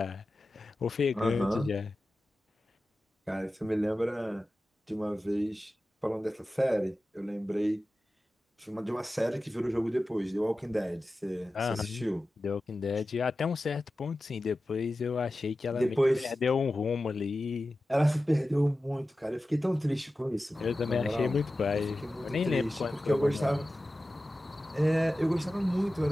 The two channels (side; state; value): both; normal; correlation 0.94